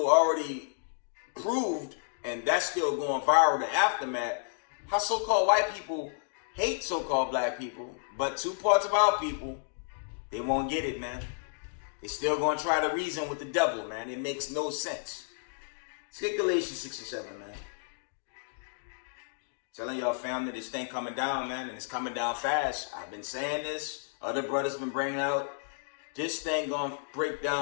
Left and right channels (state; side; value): silent; right; digital silence